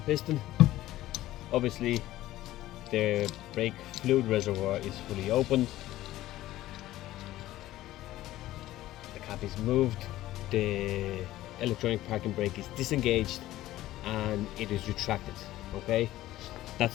piston. Obviously the brake fluid reservoir is fully opened, the cap is moved, the electronic parking brake is disengaged and it is retracted. Okay, that's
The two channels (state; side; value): quieter; right; 15.3 dB